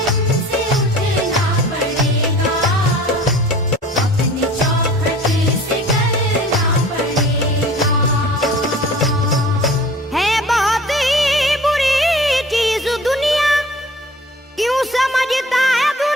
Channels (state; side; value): normal; both; correlation 0.46